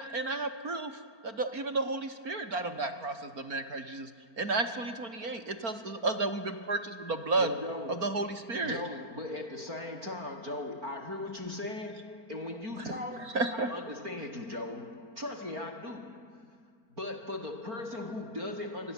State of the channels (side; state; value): left; late; 4.4 ms